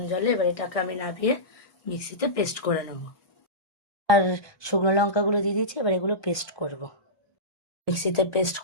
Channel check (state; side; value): late; right; 1.6 ms